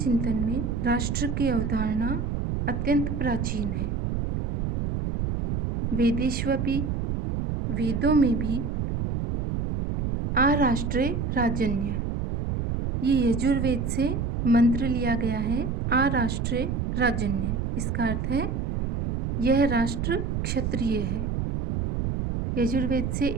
में राष्ट्र की अवधारणा अत्यंत प्राचीन है। वेदेष्वपि, वेदों में भी आराष्ट्रे राजन्य, ये यजुर्वेद से मंत्र लिया गया है। आराष्ट्रे राजन्य, इसका अर्थ है यह राष्ट्र क्षत्रिय है। यजुर्वेद से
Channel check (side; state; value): right; noise; rumble, 1 dB below the sound